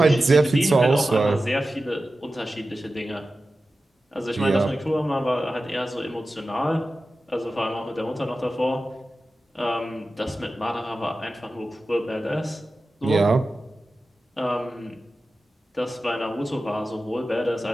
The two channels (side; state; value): both; normal; correlation 0.94